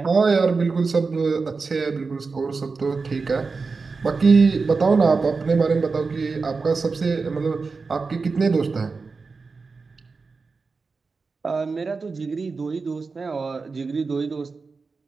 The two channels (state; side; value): quieter; left; 4.4 dB